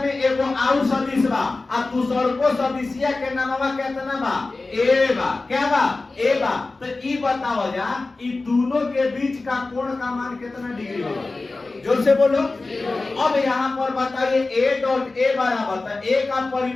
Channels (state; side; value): quieter; right; 3.4 dB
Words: एगो आउ सदिश बा, आ दूसरको सदिशिया के नामवा कितना बा? a बा। क्या बा? a बा। तो ई बताओ जा, ई दोनों के बीच का कोण का मान कितना डिग्री होगा? जोर से बोलो। अब यहाँ पर बताइए a डॉट a बराबर, तो a का